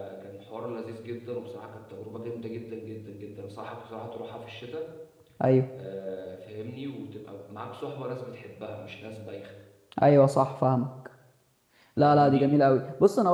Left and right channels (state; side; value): identical; both; correlation 1.00